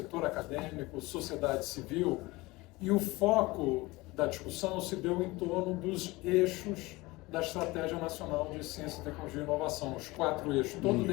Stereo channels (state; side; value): quieter; right; 21.7 dB